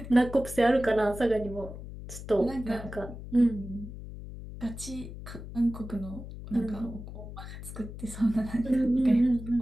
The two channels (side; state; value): left; noise; hum, 11 dB below the sound